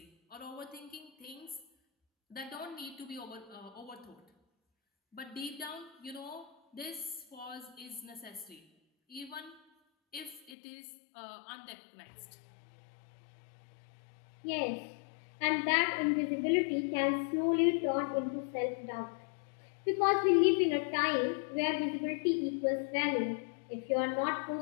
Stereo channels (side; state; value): right; drops out; at 10.5 s